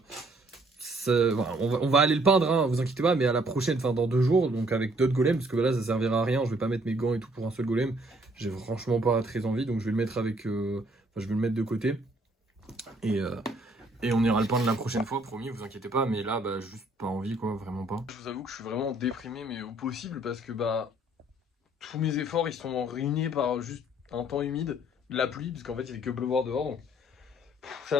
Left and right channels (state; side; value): normal; both; correlation 0.63